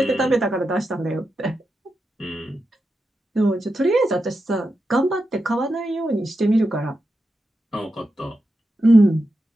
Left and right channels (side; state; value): both; normal; correlation 0.88